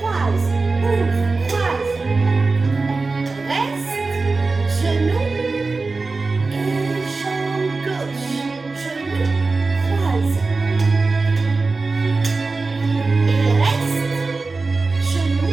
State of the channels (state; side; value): quieter; left; 3.8 dB